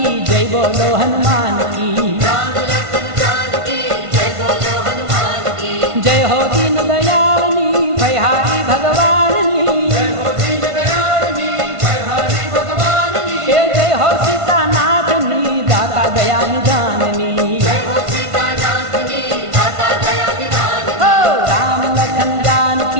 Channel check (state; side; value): late; left; 1.5 ms